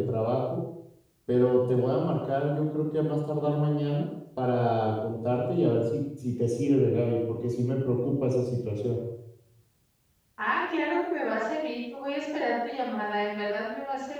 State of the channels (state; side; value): identical; both; correlation 1.00